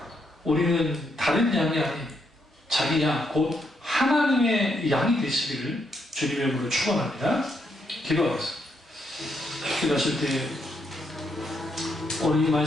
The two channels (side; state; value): both; normal; correlation 0.77